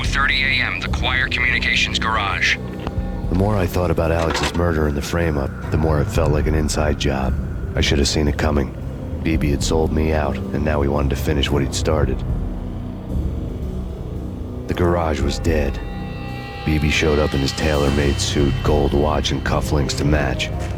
a.m., the Choir Communications Garage. The more I thought about Alex's murder and the frame-up, the more it felt like an inside job. I should have seen it coming. BB had sold me out, and now he wanted to finish what he'd started. The garage was dead. BB showed up in his tailor-made suit, gold watch, and cufflinks to match,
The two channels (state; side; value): identical; both; correlation 1.00